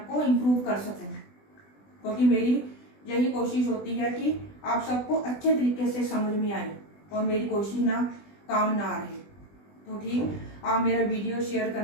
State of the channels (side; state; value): right; late; 20 ms